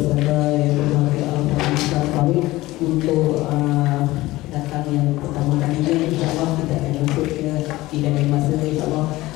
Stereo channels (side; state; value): right; quieter; 18.3 dB